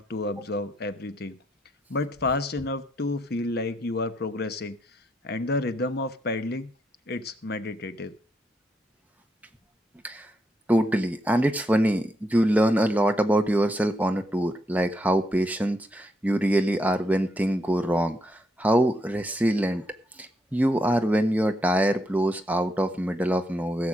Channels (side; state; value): both; normal; correlation 0.78